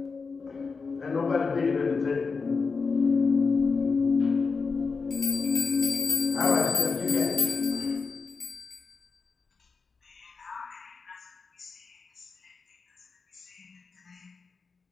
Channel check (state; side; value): quieter; right; 4.8 dB